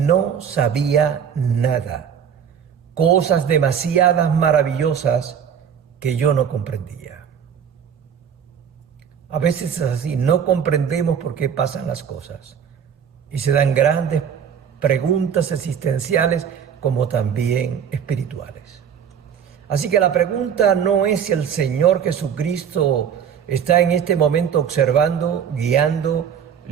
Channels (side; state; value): left; quieter; 7.9 dB